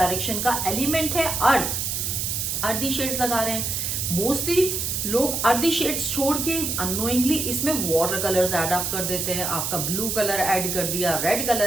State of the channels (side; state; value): right; noise; hiss, 1 dB below the sound